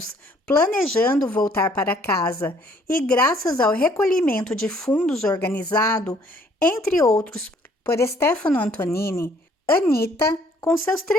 planejando voltar para casa e graças ao recolhimento de fundos organizado, entre outros, por Stefano Antonini, Anita, com seus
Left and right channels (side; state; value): both; normal; correlation 0.62